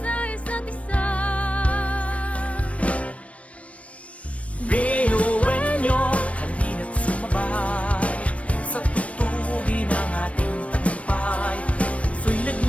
isa't isa. Binuenyo, halina't sumabay sa tutugin ng ating tagumpay. Puso'y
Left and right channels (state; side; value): late; right; 0.064 ms